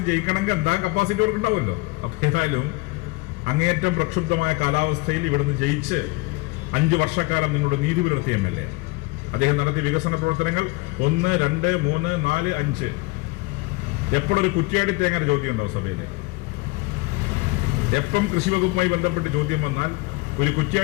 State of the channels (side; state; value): right; quieter; 23.8 dB